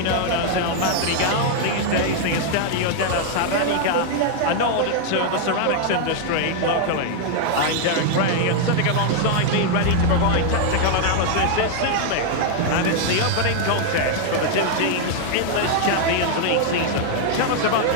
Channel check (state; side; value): different; both; correlation 0.00